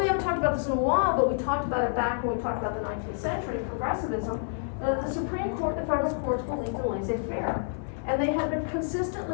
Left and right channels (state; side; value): silent; right; 59 dB below the other